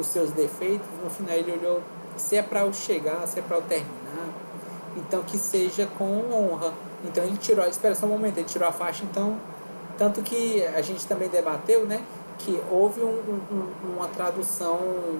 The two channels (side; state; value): both; inverted; correlation -1.00